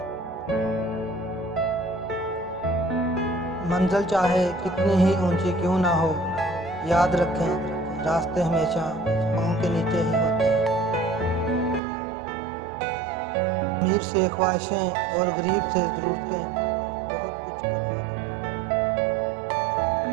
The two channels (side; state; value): left; drops out; at 11.8 s